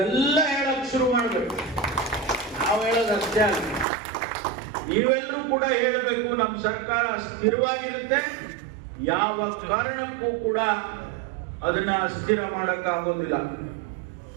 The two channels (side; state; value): left; drops out; at 3.9 s